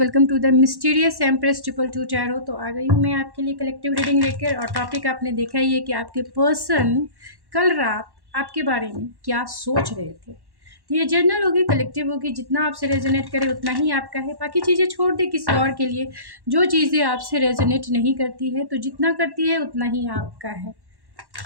to the mysterious empress triple two tarot. तो आ गई हूँ मैं आपके लिए कलेक्टिव रीडिंग लेकर। और टॉपिक आपने देखा ही है कि आपके पर्सन कल रात आपके बारे में क्या सोच रहे थे। तो ये जनरल होगी, कलेक्टिव होगी, जितना आपसे रेजोनेट करे उतना ही आपका है। बाकी चीज़ें छोड़ दे किसी और के लिए। जो चीज़ें आपसे रेजोनेट नहीं करती है, तो जितना करती है उतना ही आपका है।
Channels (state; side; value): late; left; 1.1 ms